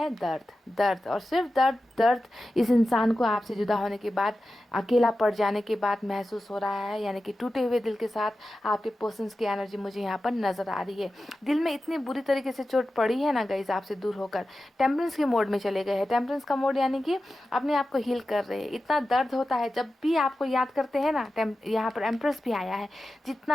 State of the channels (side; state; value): both; normal; correlation 0.93